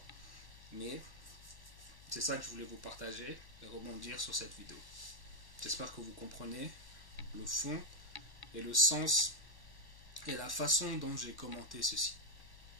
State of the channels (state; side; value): late; right; 1.1 ms